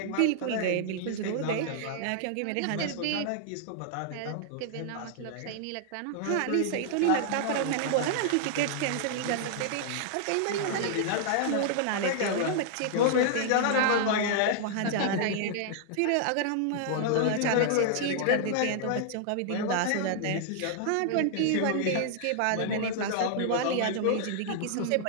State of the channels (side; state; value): both; different; correlation -0.01